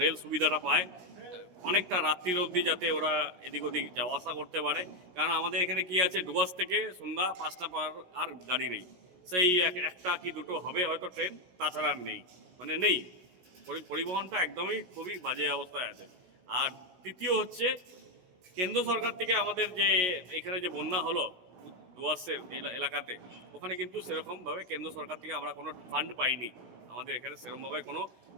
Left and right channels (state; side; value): late; left; 16 ms